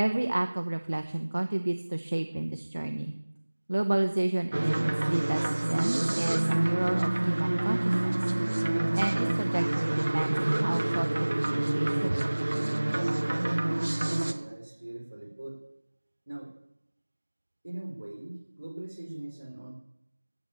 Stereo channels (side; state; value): both; inverted; correlation -1.00